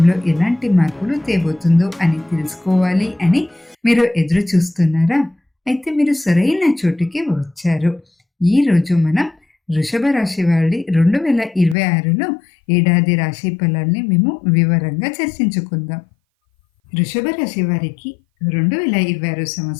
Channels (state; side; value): drops out; right; at 11.8 s